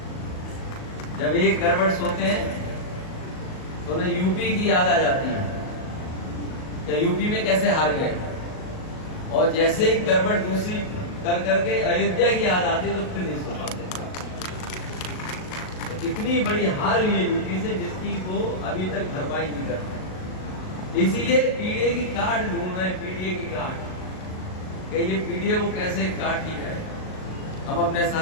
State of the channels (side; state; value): right; late; 38 ms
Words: जब एक गड़बड़ सोते हैं तो उन्हें यूपी की याद आ जाती है कि यूपी में कैसे हार गए, और जैसे ही गड़बड़ दूसरी कर करके अयोध्या की याद आती तो फिर नहीं सो पाते। तो इतनी बड़ी हार हुई है यूपी से जिसकी वो अभी तक भरपाई नहीं कर पाए। इसीलिए पीडीए की काट ढूंढ रहे हैं, पीडीए की काट, कि ये पीडीए को कैसे काट दी जाए। हम अपने